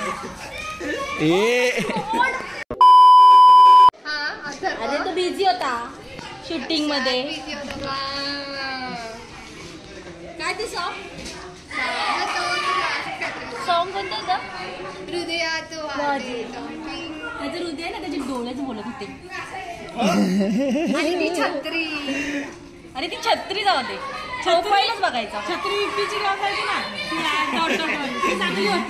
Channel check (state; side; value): identical; both; correlation 1.00